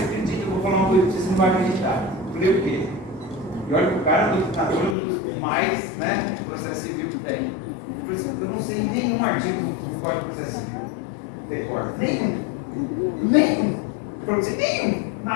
acredita, eu vou falar uma coisa que você não vai acreditar. Eu falei, o quê? E olha que o cara é um dos mais, né, processo civil que tem. Eu falei assim, eu não sei nenhum artigo do Código de Processo Civil. Decor. Nenhum. Ele falou assim, nenhum.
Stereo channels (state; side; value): drops out; right; at 5.0 s